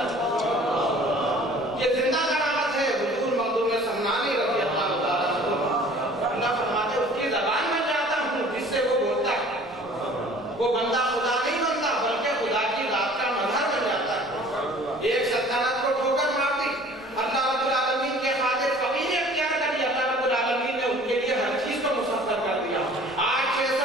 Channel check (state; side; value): normal; both; correlation 0.49